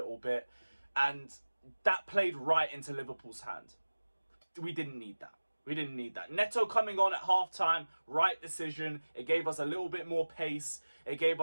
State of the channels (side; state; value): both; inverted; correlation -1.00